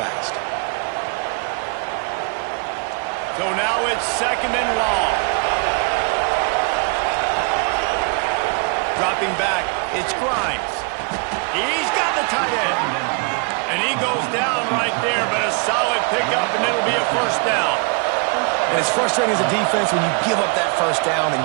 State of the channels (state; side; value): quieter; left; 35.8 dB